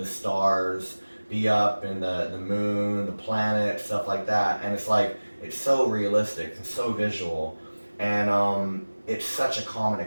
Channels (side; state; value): both; inverted; correlation -1.00